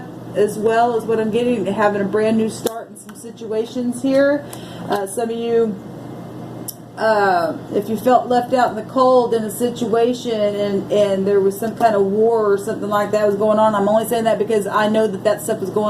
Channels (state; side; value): identical; both; correlation 1.00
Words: as well as what I'm getting, having a brand new start in some situations here. Some of you, if you felt left out in the cold in a situation, and there was some kind of war or something like that was going on, I'm only saying that because I know that stuff was